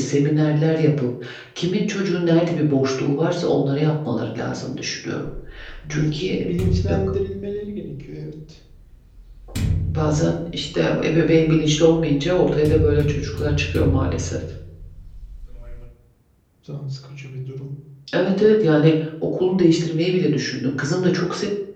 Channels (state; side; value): identical; both; correlation 1.00